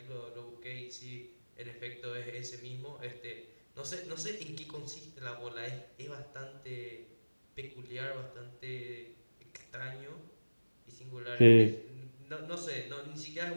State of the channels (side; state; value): both; inverted; correlation -1.00